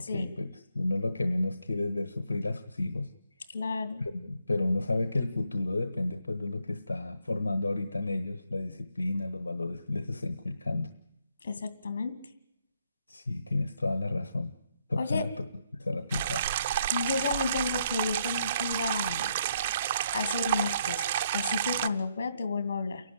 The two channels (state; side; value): inverted; both; correlation -0.74